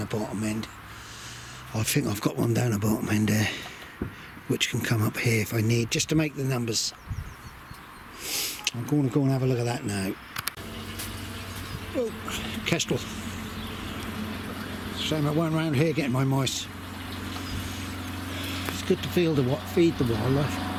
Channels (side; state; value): both; identical; correlation 1.00